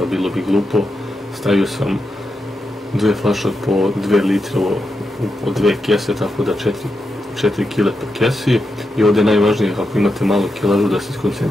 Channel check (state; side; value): normal; both; correlation 0.87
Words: bilo bi glupo. Stavio sam 2 flaše po 2 litre po 2 kese, tako da 4 kile po kesi. I ovdje je najvažnije, ako imate malu kilažu, da se